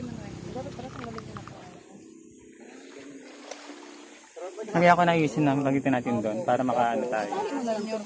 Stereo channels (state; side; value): identical; both; correlation 1.00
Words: mo na rin. Dapat para tanggalin ko na po. Kaya ako naayusin na bagitin natin doon para makaano tayo. Tali mo na rin yung